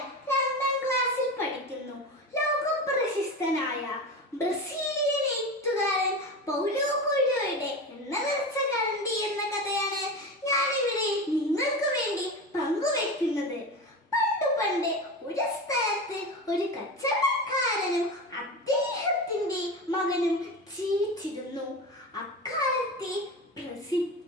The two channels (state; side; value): normal; both; correlation 0.25